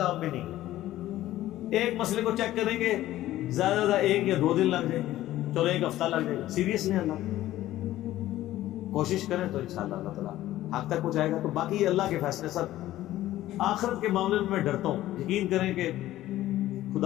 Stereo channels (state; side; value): quieter; right; 14.6 dB